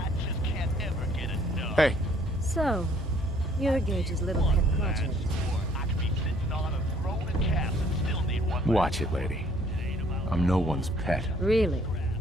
Hey, So, you're Gage's little pet project. watch it, lady. I'm no one's pet. Really?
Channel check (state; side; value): normal; both; correlation 0.61